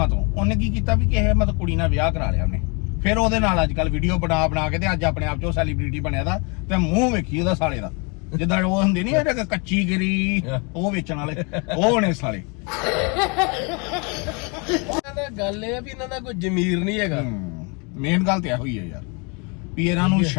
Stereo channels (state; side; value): quieter; right; 32.5 dB